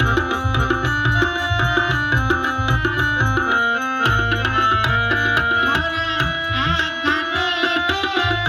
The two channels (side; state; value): both; identical; correlation 1.00